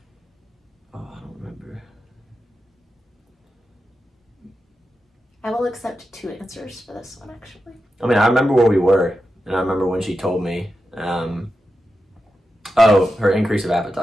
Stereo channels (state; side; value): normal; both; correlation 0.90